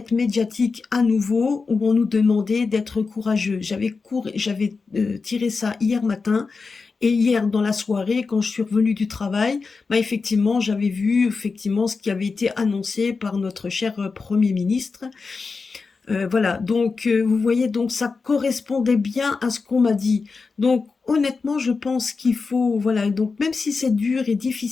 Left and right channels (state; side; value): quieter; right; 4.5 dB